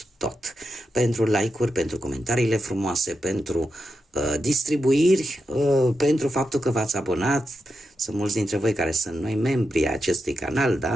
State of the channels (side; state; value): both; normal; correlation 0.87